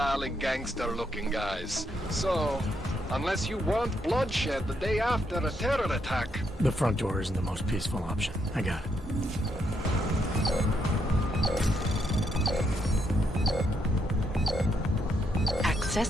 gangster-looking guys. So, unless you want bloodshed the day after a terror attack... The front door isn't the most peaceful option. I got it.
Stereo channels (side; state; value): both; normal; correlation 0.77